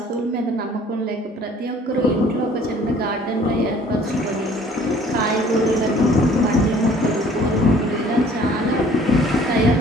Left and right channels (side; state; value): both; normal; correlation 0.54